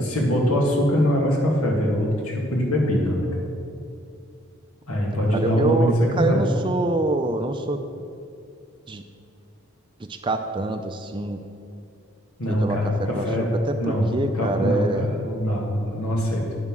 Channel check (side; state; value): both; normal; correlation 0.65